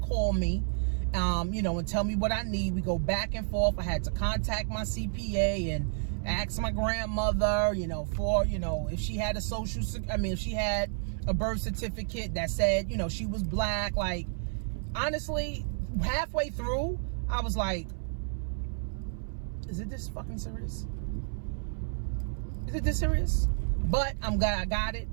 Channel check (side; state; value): left; silent; 57 dB below the other